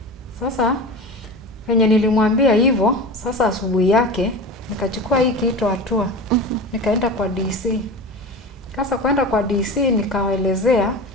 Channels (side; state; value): both; normal; correlation 0.30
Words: Sasa venye nilimwambia hivyo, sasa asubuhi yake nikachukua hii kitu hatua. Nikaenda kwa DC. Sasa kwenda kwa DC nikawaelezea,